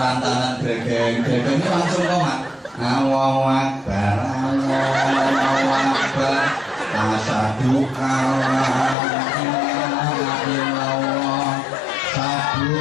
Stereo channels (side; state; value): right; drops out; at 9.0 s